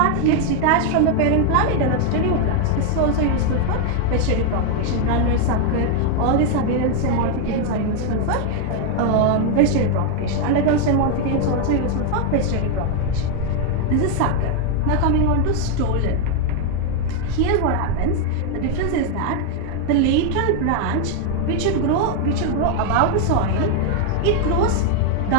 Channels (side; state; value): both; different; correlation 0.01